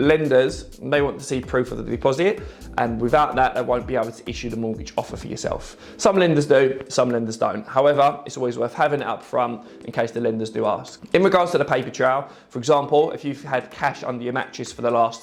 they want to see proof of the deposit, and without that, they won't be able to issue the mortgage offer for yourself. Some lenders do, some lenders don't. However, it's always worth having it up front in case the lenders do ask. In regards to the paper trail, for example, if you've had cash under your mattress for the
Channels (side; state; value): both; identical; correlation 1.00